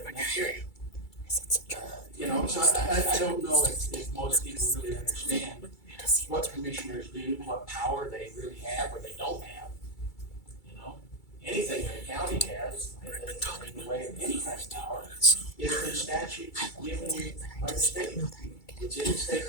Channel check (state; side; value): late; right; 2.3 ms